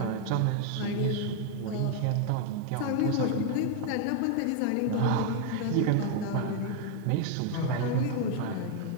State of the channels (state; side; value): different; both; correlation 0.01